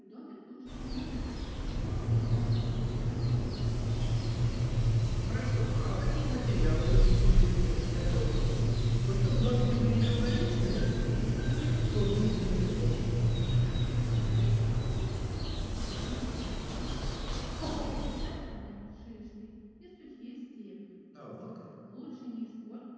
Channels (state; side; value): identical; both; correlation 1.00